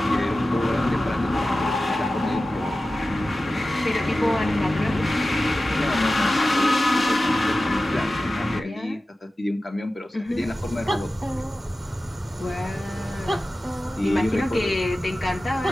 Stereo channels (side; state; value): both; normal; correlation 0.95